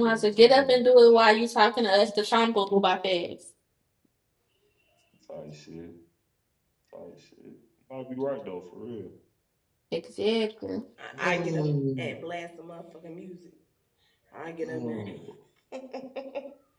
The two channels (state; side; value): identical; both; correlation 1.00